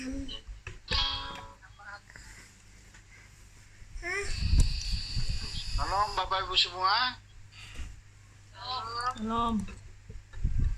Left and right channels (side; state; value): both; identical; correlation 1.00